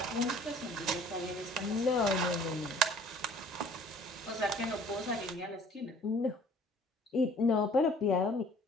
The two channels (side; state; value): both; normal; correlation 0.53